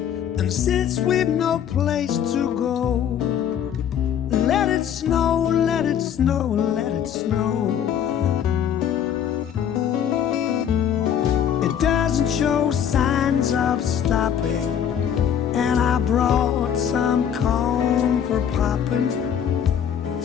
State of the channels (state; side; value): quieter; right; 8.9 dB